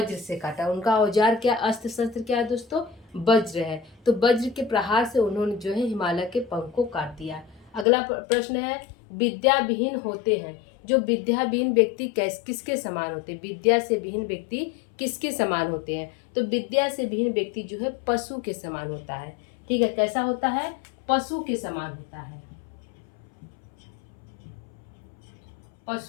से काटा। उनका औजार क्या, अस्त्र शस्त्र क्या है दोस्तों, वज्र है। तो वज्र के प्रहार से उन्होंने जो है हिमालय के पंख को काट दिया। अगला प्रश्न है विद्या विहीन होते हैं। जो विद्या विहीन व्यक्ति किसके समान होते हैं, विद्या से विहीन व्यक्ति किसके समान होते हैं। तो विद्या से विहीन व्यक्ति जो है पशु के समान होता है। ठीक है, कैसा होता है, पशु के समान होता है,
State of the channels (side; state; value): right; drops out; at 7.9 s